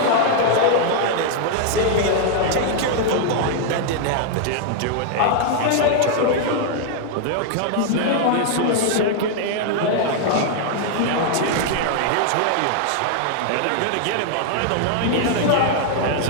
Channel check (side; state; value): both; different; correlation 0.00